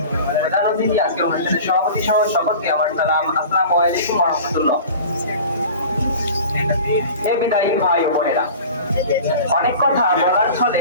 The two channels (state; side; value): inverted; both; correlation -0.39